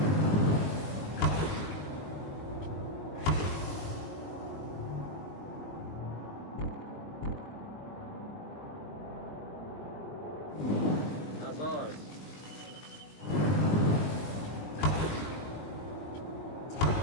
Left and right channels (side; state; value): right; late; 20 ms